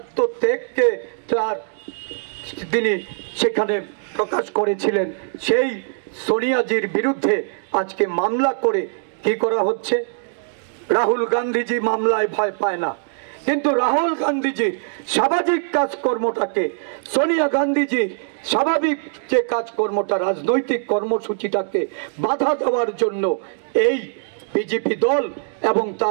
তিনি সেখানে প্রকাশ করেছিলেন, সেই সোনিয়াজির বিরুদ্ধে আজকে মামলা করে কি করা হচ্ছে? রাহুল গান্ধীজি মামলায় ভয় পায় না, কিন্তু রাহুল গান্ধীজির সামাজিক কাজকর্মটাকে, সোনিয়া গান্ধীজির স্বাভাবিক যে কাজকর্মটা, রাজনৈতিক কর্মসূচিটাকে বাধা দেওয়ার জন্য এই বিজেপি দল এবং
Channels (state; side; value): silent; left; digital silence